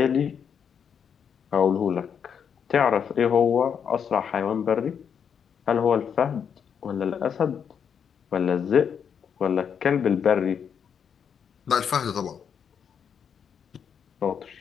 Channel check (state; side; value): quieter; right; 7.4 dB